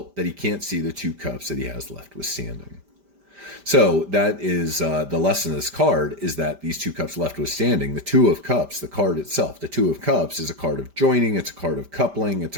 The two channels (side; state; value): left; late; 5.1 ms